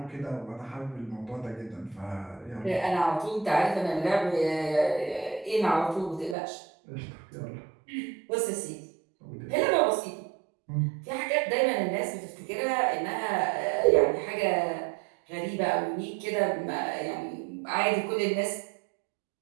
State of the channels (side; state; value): left; drops out; at 6.4 s